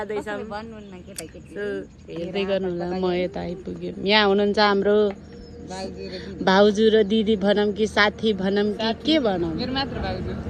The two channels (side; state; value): both; identical; correlation 1.00